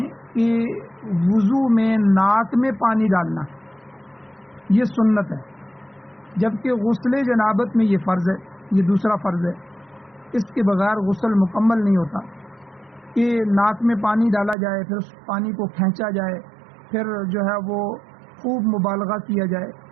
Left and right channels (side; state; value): left; drops out; at 14.6 s